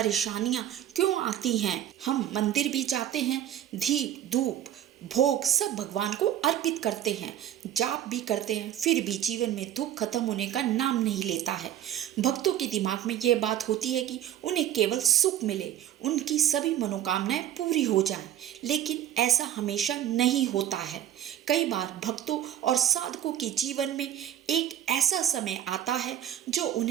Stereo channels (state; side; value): quieter; left; 11.4 dB